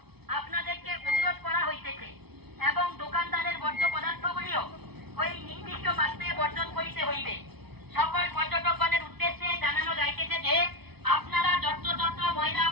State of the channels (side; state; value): left; late; 0.98 ms